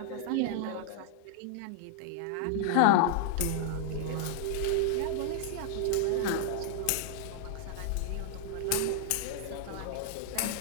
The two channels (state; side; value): different; both; correlation -0.01